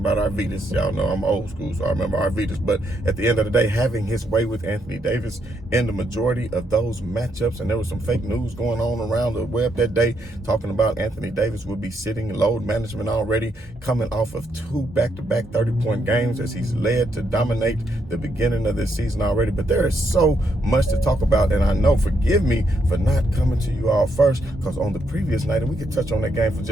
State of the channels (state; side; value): normal; both; correlation 0.77